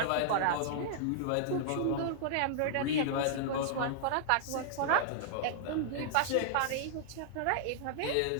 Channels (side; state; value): both; different; correlation -0.01